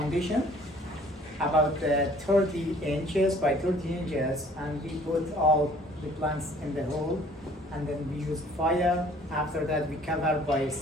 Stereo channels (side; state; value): both; normal; correlation 0.55